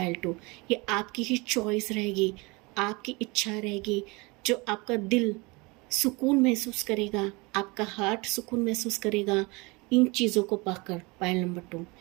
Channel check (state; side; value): quieter; left; 26.0 dB